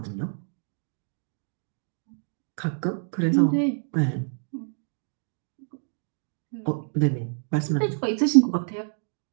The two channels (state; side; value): silent; left; digital silence